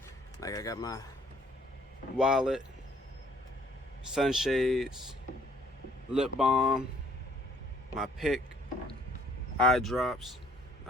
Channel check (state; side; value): normal; both; correlation 0.61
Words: like I got my wallet, sunshades, lip balm, my pick, eye drops,